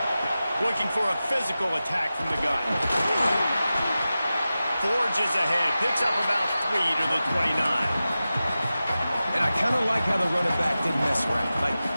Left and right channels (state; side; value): inverted; both; correlation -0.94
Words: Looking for a physical attack from the gun. Forges ahead. Picks up about 3 to the 29. And I kind of like how the running back didn't mess around. Like,